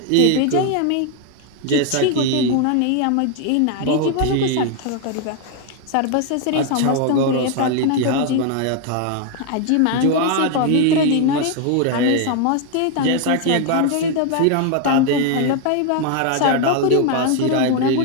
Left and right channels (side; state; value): both; different; correlation 0.01